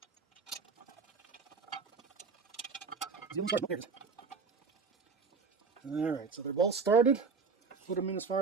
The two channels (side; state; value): left; quieter; 5.0 dB